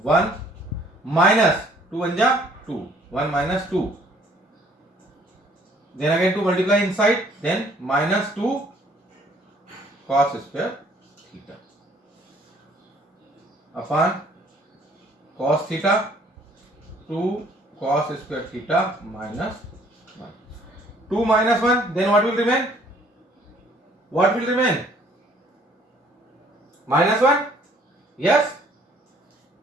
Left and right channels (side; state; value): both; normal; correlation 0.60